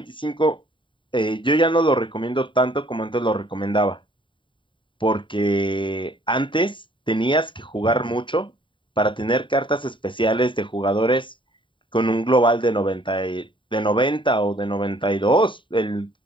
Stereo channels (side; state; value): right; late; 0.24 ms